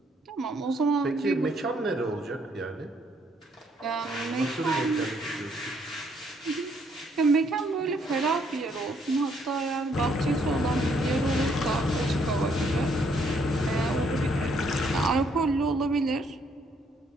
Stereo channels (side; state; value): both; normal; correlation 0.69